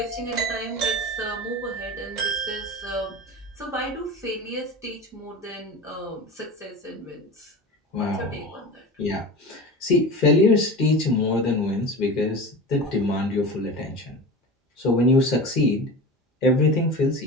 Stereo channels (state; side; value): normal; both; correlation 0.31